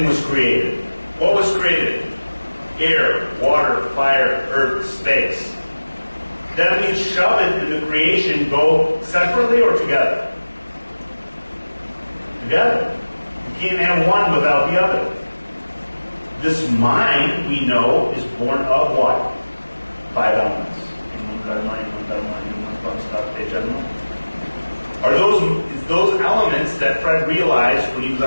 was created. What was created? Air, water, fire, earth, space. That means Shabbat and the creation go separately or together? Together. You can't have one without the other. This mind, we know, is born of what? 5 elements. Are those elements that Fred realized when he was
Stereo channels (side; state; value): both; inverted; correlation -1.00